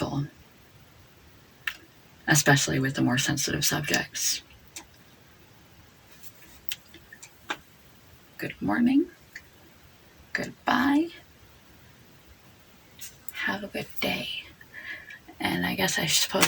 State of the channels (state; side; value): identical; both; correlation 1.00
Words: especially with the more sensitive subjects. Good morning. Goodbye. Have a good day. And I guess I